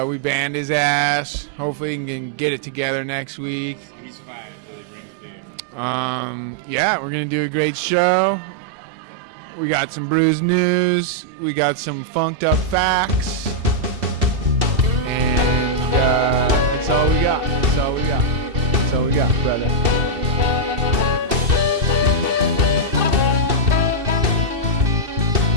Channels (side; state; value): left; late; 2.7 ms